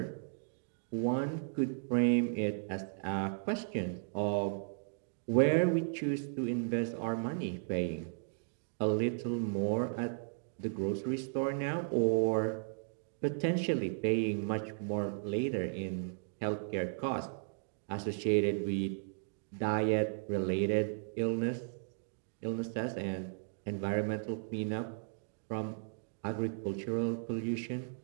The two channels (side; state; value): left; silent; digital silence